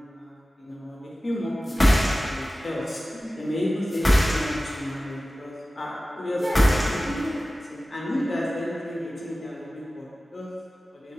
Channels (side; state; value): both; normal; correlation 0.96